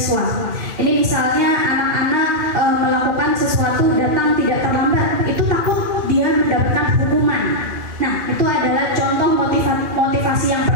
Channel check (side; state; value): left; late; 2.4 ms